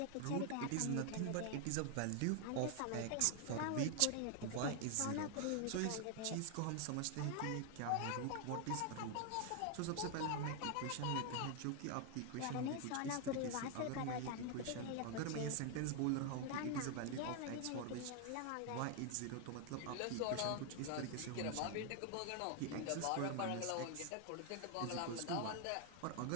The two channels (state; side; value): different; both; correlation 0.00